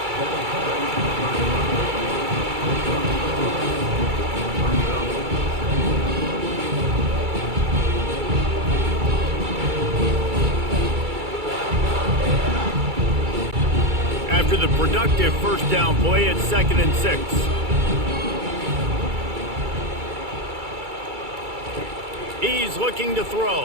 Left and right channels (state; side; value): late; left; 2.3 ms